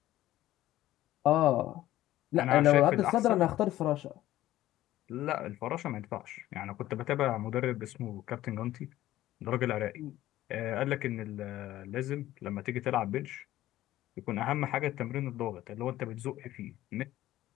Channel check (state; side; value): quieter; right; 14.7 dB